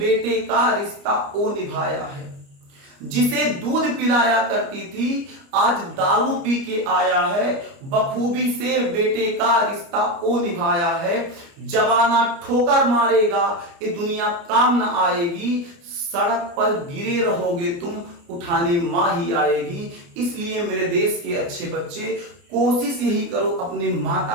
का रिश्ता वो निभाया है। जिसे दूध पिलाया करती थी आज दारू पी के आया है, बखूबी से बेटे का रिश्ता वो निभाया है। जमाना ठोकर मारेगा, ये दुनिया काम न आएगी, सड़क पर गिरे रहोगे तुम, उठाने मां ही आएगी। इसलिए मेरे देश के अच्छे बच्चे, कोशिश यही करो, अपने माता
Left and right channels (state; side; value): late; left; 29 ms